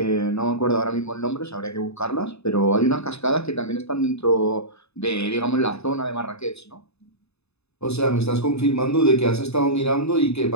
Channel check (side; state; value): right; late; 0.79 ms